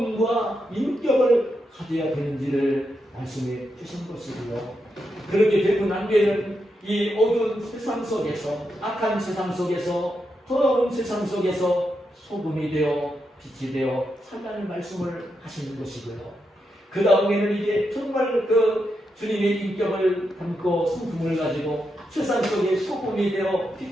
인격을 가져야 되는지를 말씀해 주신 것이고요. 그렇게 되고 난 뒤에는 이 어두운 세상 속에서 악한 세상 속에서 더러운 세상 속에서 소금이 되어 빛이 되어 살라는 말씀을 하시는 것이고요. 그 다음에는 이제 정말 주님의 인격을 담고 성품을 가지고 세상 속에 소금이 되어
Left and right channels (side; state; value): both; normal; correlation 0.84